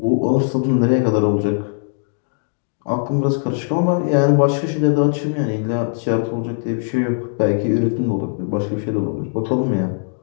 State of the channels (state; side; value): silent; right; digital silence